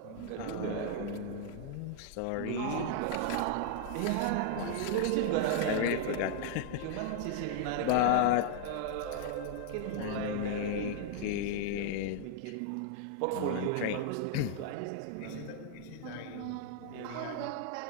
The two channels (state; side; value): different; both; correlation 0.00